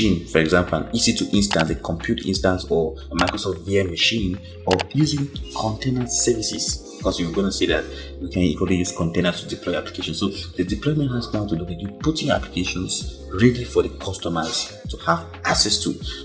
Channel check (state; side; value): identical; both; correlation 1.00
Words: for example, an EC2 instance, a compute instance, or a Microsoft VM machine, or using container services. Because you're going to see that we can equally use containers to deploy applications. So the deployment has now to do with you putting applications ready for the customers to have access to.